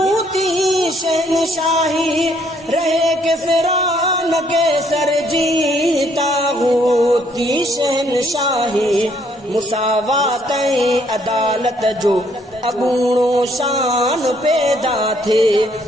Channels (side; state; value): both; normal; correlation 0.67